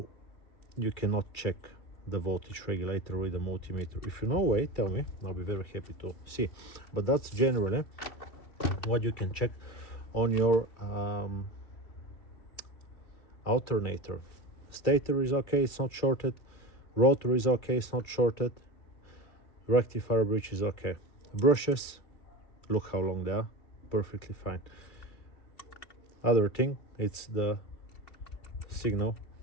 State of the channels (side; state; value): right; late; 2.3 ms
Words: you cannot check the voltage regulator with a multimeter. If you know a way, tell me, I'll be very happy to see. But that's generally what you can check on your alternator. Stator is okay, it's not shorted. Rotor is okay, it's not shorted. Rectifier bridge is okay. Brushes, look how long they are, perfectly fine. Other thing, it's the signal